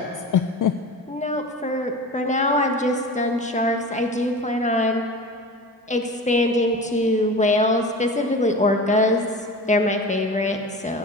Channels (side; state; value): both; normal; correlation 0.33